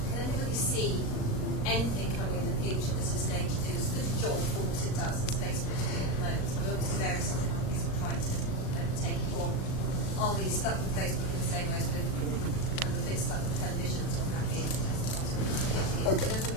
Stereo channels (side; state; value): right; late; 38 ms